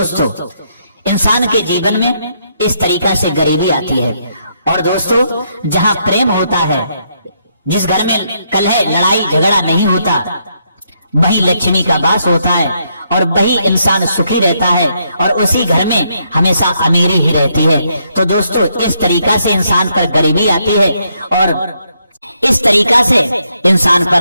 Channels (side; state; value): both; inverted; correlation -0.76